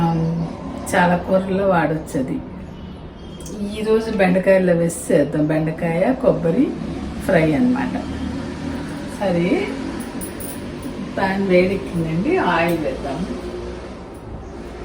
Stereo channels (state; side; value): identical; both; correlation 1.00